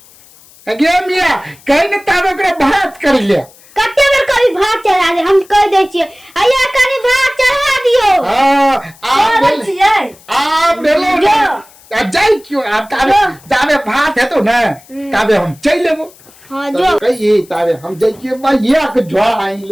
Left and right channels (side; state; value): left; noise; hiss, 26 dB below the sound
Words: गे मिया कहीं ना तारे ओकरा भात कर ले कते बेर कभी भात चढ़ा दे हम कह दे छिए आया कनी भात चढ़ा दियो हां आ बेलो आ जाई क्यों आप तारे जावे भात है तो ना तावे हम चल लेबो हां जो कहिए तारे हम जाइए बा ये के झोड़ा आई